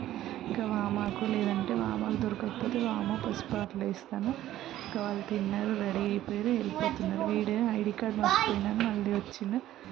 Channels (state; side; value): quieter; left; 13.5 dB